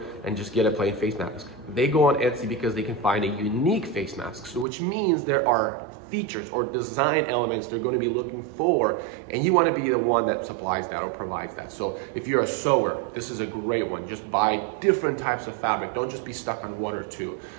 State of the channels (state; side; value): drops out; left; at 4.7 s